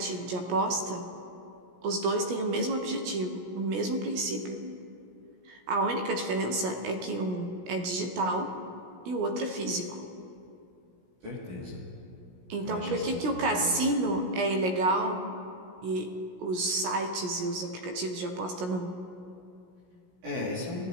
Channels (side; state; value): left; late; 17 ms